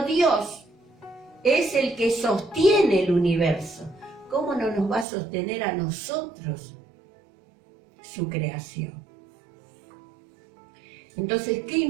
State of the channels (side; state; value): left; drops out; at 5.1 s